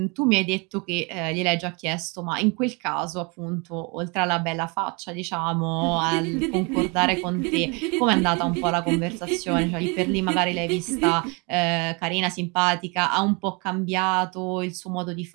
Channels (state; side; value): quieter; left; 30.6 dB